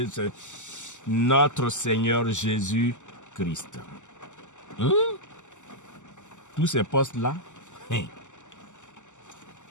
notre Seigneur Jésus-Christ. Tous ces postes-là,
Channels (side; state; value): right; late; 0.84 ms